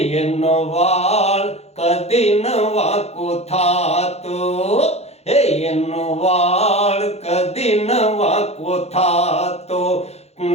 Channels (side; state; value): right; late; 0.31 ms